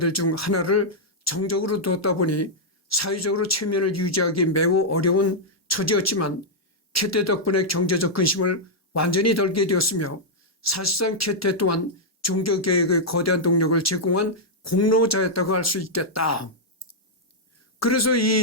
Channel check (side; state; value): both; normal; correlation -0.06